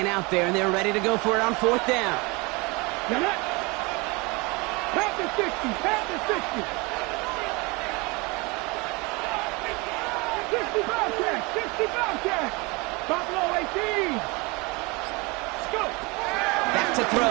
out there, and they're ready to go for it on 4th down. Pat the 60, pat the 60. 60 Bobcat, 60 Bobcat. Buffalo 18. Let's go. Back to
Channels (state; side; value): quieter; left; 26.6 dB